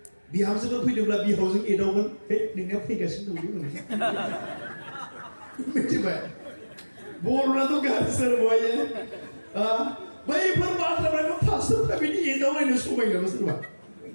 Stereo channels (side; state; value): both; inverted; correlation -1.00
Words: बिहामजोफोर फैदोंब्ला बिहावजों एदावगोन हे नोंनिया फैगासिनो दं मिथिबाय बर'नाथ' गाज्रि बहायो बैफोर बाथ्राफोरखौ पास्टरफ्रा बिदि एदावलायनो समायनाबो सोरबा